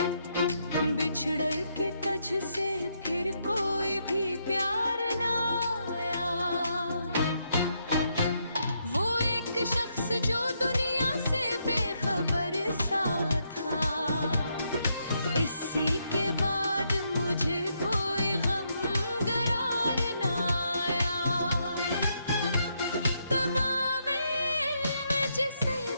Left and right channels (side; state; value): both; inverted; correlation -0.78